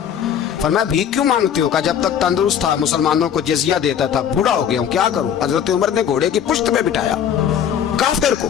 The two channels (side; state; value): right; quieter; 8.8 dB